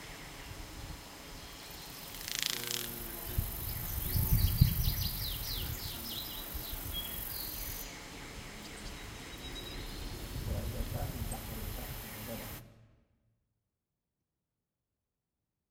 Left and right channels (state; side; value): identical; both; correlation 1.00